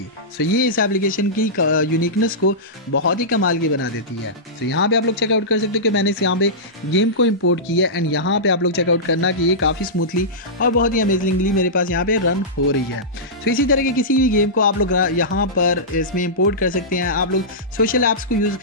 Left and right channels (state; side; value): normal; both; correlation -0.16